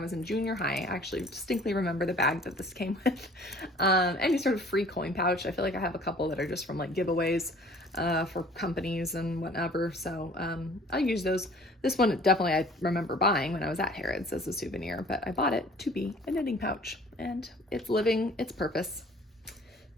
in junior high. I actually distinctly remember the bag that this came with. Any sort of free coin pouch. I feel like I have a couple that are just from like giveaways for companies and whatever. So I use those. This one definitely I remember buying when I was at Harrods as a souvenir, but I bought it to be a knitting pouch and it's living its purpose.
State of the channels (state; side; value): normal; both; correlation 0.51